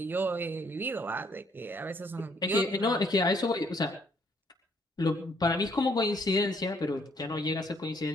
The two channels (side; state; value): both; normal; correlation 0.67